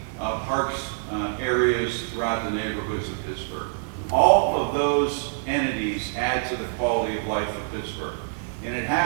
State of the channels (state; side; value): silent; left; digital silence